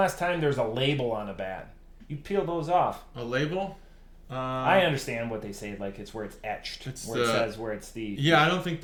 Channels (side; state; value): both; identical; correlation 1.00